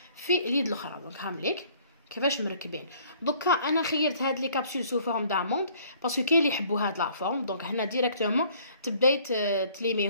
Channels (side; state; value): both; inverted; correlation -0.58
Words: في اليد الاخرى. دونك هامليك كيفاش مركبين. دوكا انا خيرت هاد لي كابسول سو فورم داموند باسكو كاين اللي يحبوا هاد لا فورم. دونك هنا ديريكتومون تبداي